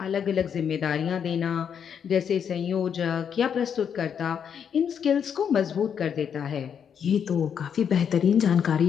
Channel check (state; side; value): quieter; right; 7.7 dB